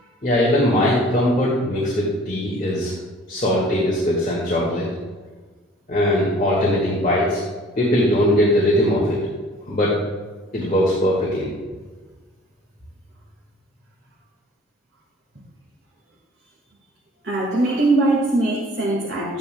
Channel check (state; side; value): normal; both; correlation 0.51